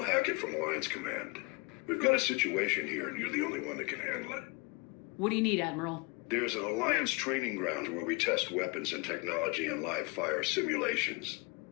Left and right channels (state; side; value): quieter; right; 28.7 dB